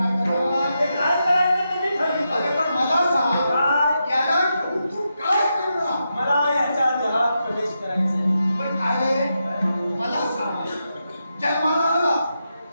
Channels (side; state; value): both; inverted; correlation -0.86